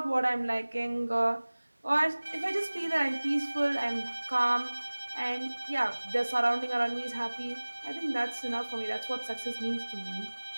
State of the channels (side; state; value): both; inverted; correlation -1.00